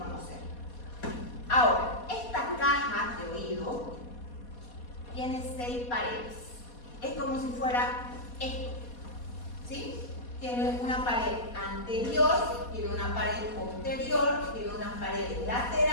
Ahora, esta caja de oído tiene 6 paredes. Es como si fuera esto. ¿Sí? Tiene una pared anterior, tiene una pared posterior, tiene unas paredes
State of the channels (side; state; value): right; late; 4.2 ms